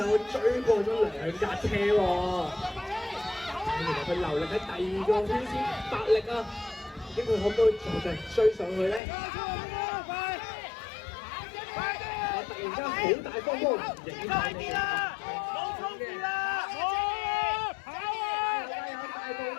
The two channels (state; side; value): drops out; right; at 9.0 s